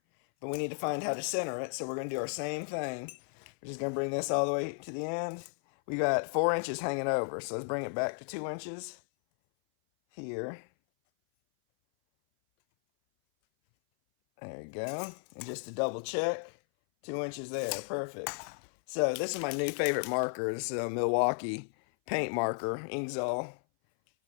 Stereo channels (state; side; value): silent; right; 55 dB below the other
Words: but we need to find how to center it, so we're going to do our same thing. We're just going to bring this all the way to the end. We got 4 inches hanging over, so let's bring it back to 2 inches here. There we go. And just to double check, 2 inches there, perfect. So this is my new favorite marker. This is a Milwaukee paint marker, Inksol,